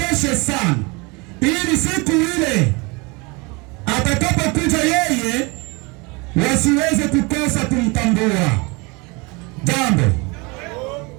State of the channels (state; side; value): quieter; left; 27.8 dB